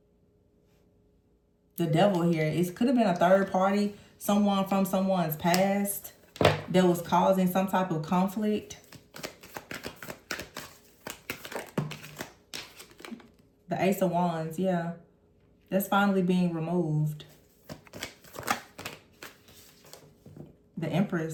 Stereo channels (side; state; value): both; identical; correlation 1.00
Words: the Devil here. It could have been a third party, someone from someone's past that was causing some type of conflict. The Ace of Wands, yeah. That's finally being removed. The